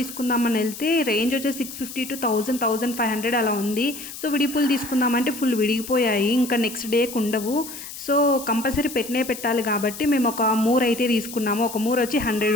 వెళ్తే రేంజ్ వచ్చేసి 650 to 1500 అలా ఉంది. సో విడిపూలు తీసుకుందామంటే ఫుల్ విడిగిపోయాయి, ఇంకా నెక్స్ట్ డేకి ఉండవు. సో కంపల్సరీ పెట్టాలి కాబట్టి మేము ఒక మూర అయితే తీసుకున్నాము. ఒక మూర వచ్చి 100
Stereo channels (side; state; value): left; noise; hiss, 12 dB below the sound